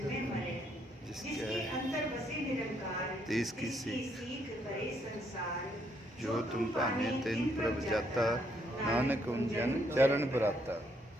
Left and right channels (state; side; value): normal; both; correlation 0.72